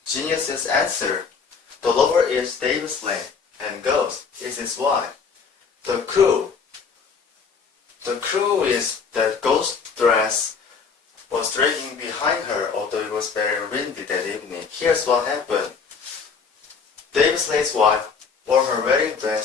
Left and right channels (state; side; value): quieter; right; 5.6 dB